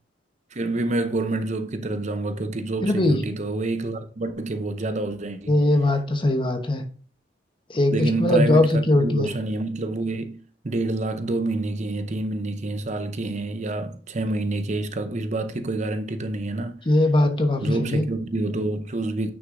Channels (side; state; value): both; normal; correlation 0.75